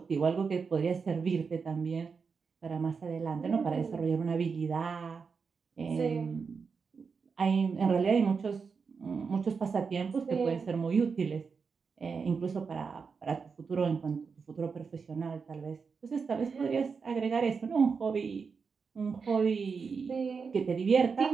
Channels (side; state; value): left; quieter; 5.4 dB